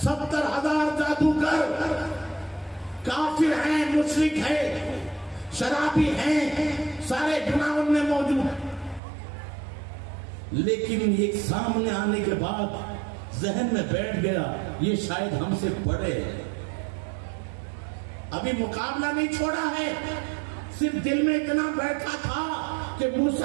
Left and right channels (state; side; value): drops out; left; at 9.0 s